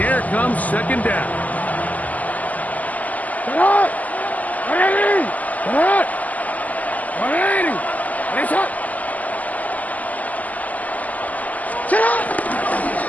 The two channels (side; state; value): right; late; 0.078 ms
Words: comes second down. Get up! 180! Get up! 180! It's up! Sit up!